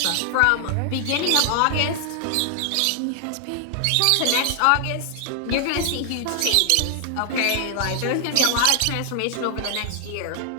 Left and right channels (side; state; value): both; different; correlation 0.00